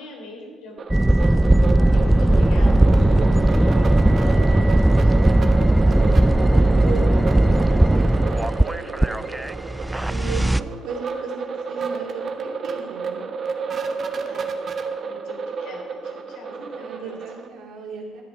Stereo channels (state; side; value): normal; both; correlation 0.97